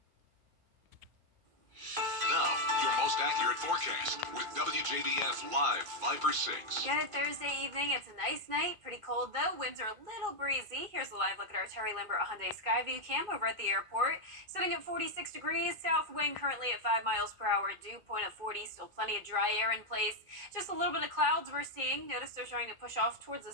Now, your most accurate forecast with WJBF Live Viper 6. Good Thursday evening. It's a nice night. Pretty cold though. Winds are a little breezy. Here's a live look at our Terry Limbert Hyundai Skyview cam over at the airport. Sitting at 46 degrees. South wind currently at 5 miles per hour. Dew point of 40. Still plenty of dry air in place. Just a little bit of clouds we're seeing. Notice they're starting to push off towards the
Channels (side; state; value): left; late; 2.3 ms